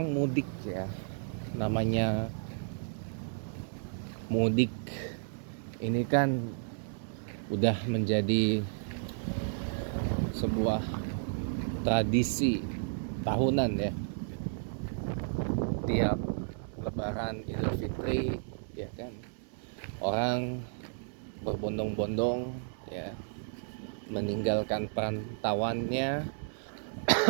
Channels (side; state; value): left; silent; 56 dB below the other